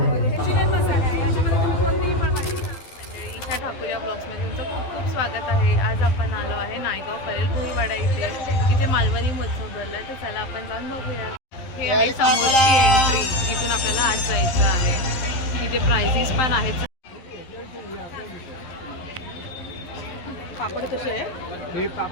ईशा ठाकूर या ब्लॉग्समध्ये तुमचं खूप खूप स्वागत आहे. आज आपण आलो आहे नायगाव परेल भुईवाडा इथे मालवणी महोत्सव भरला आहे. तर चला आपण जाऊन बघूया. हे आहे समोरची एंट्री. इथून आपल्याला आज जायचं आहे. इथे प्राइजेस पण आहेत. पापड कसे आहे? हे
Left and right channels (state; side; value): late; right; 11 ms